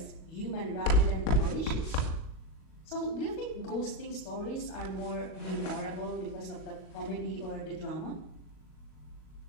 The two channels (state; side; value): late; right; 38 ms